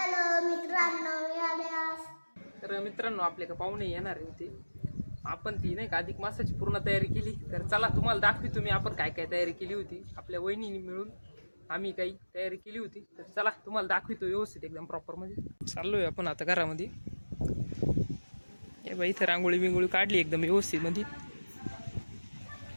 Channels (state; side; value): inverted; both; correlation -1.00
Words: मित्रांनो, मी आले आज. तर मित्रांनो, आपले का पाहुणे येणार होते. आपण ती नाही का अधिक मासाची पूर्ण तयारी केली. तर चला तुम्हाला दाखवी तुम्ही आपण काय काय तयारी केली होती. आपल्या वहिनीने मिळून आम्ही काही तयारी केली होती. तर चला तुम्हाला दाखवितो व्यवस्थित एकदम प्रॉपरमध्ये. चाललोय आपण आता घरामध्ये. हे बाई इथं रांगोळी बिंगोळी काढली एकदम व्यवस्थित मध्ये.